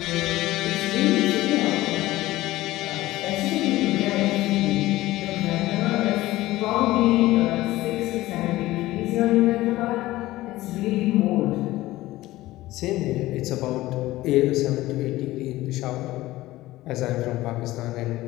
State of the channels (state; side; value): quieter; right; 17.2 dB